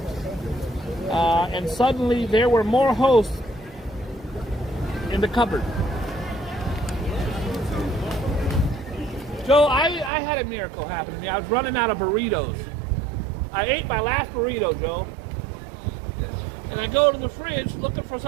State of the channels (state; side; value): drops out; left; at 10.1 s